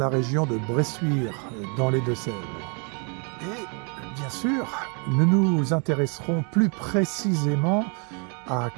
région de Bressuire, dans les Deux-Sèvres. Et bien sûr, nous nous intéresserons plus précisément à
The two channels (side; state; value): left; quieter; 36.7 dB